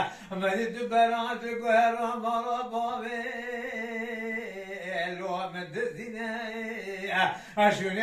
مدی تو برانت گوهرا مارا بابه لو مدزینه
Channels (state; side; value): identical; both; correlation 1.00